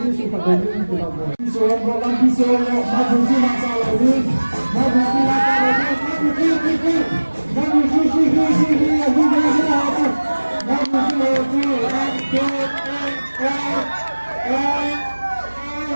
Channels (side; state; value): both; inverted; correlation -1.00